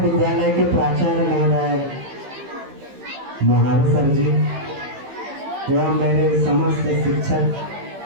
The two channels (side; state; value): left; late; 15 ms